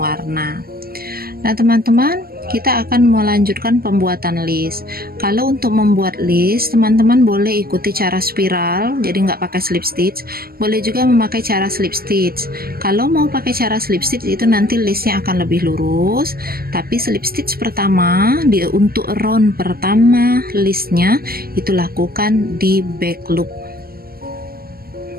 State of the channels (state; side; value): late; left; 0.44 ms